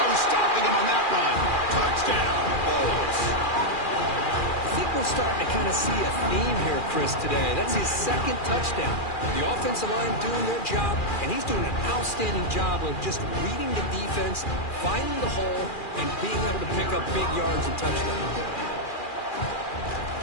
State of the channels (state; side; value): late; right; 2.4 ms